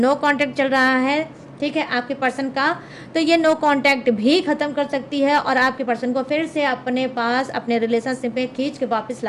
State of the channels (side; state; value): both; identical; correlation 1.00